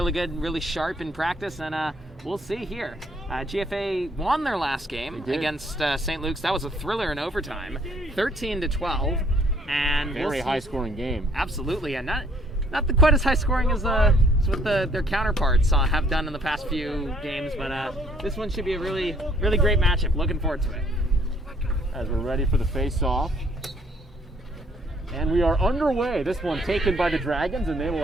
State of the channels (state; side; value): normal; both; correlation 0.64